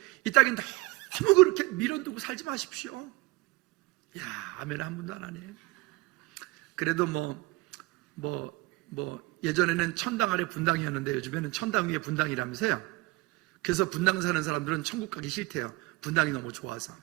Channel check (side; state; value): left; quieter; 21.7 dB